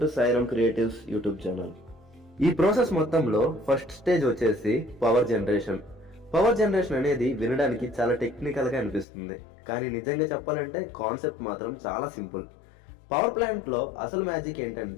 to Sairam creatives YouTube channel. ఈ ప్రాసెస్ మొత్తంలో ఫస్ట్ స్టేజ్ వచ్చేసి పవర్ జనరేషన్. పవర్ జనరేషన్ అనేది వినడానికి చాలా టెక్నికల్ గా అనిపిస్తుంది, కానీ నిజంగా చెప్పాలంటే కాన్సెప్ట్ మాత్రం చాలా సింపుల్. పవర్ ప్లాంట్ లో అసలు మ్యాజిక్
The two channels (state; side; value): drops out; right; at 9.1 s